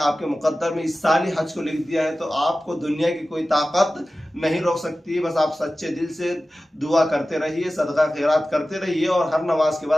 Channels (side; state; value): both; normal; correlation 0.95